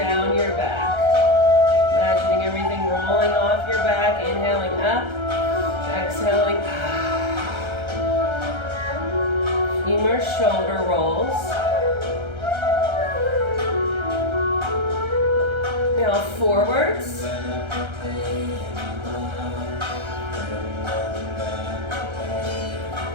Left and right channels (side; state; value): left; late; 1.3 ms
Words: your back. Imagining everything rolling off your back. Inhaling up. Exhaling. A few more shoulder rolls. Now forwards. I'm